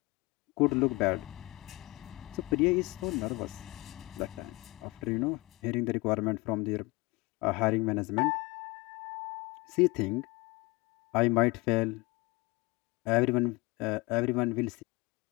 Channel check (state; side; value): quieter; right; 23.7 dB